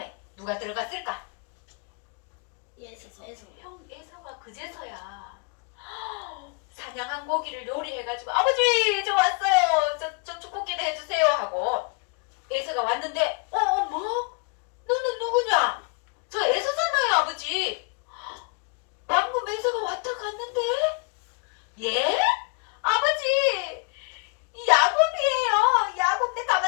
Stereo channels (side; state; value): right; quieter; 32.8 dB